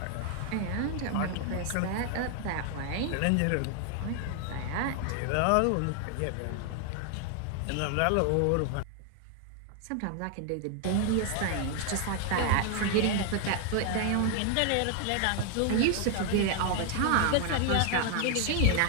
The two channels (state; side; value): different; both; correlation 0.00